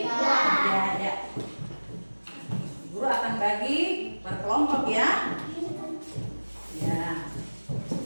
ya. Guru akan bagi per kelompok ya.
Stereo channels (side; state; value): both; inverted; correlation -1.00